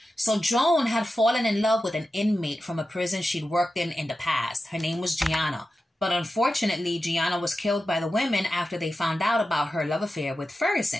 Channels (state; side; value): normal; both; correlation 0.92